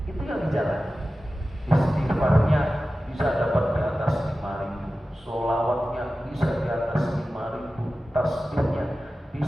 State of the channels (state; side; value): normal; both; correlation 0.95